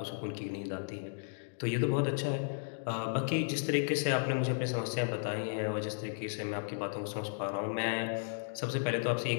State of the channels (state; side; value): silent; right; digital silence